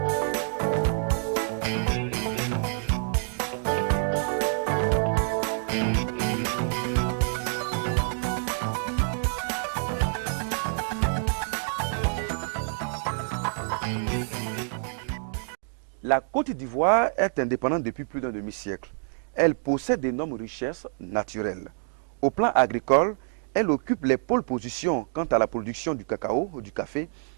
Côte d'Ivoire est indépendante depuis plus d'un demi-siècle. Elle possède d'énormes richesses naturelles. Au plan agricole, elle occupe les pôles positions quant à la production du cacao, du café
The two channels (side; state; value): left; silent; digital silence